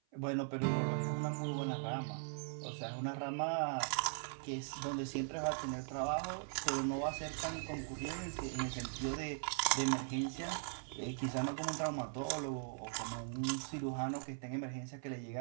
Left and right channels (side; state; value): left; silent; 51 dB below the other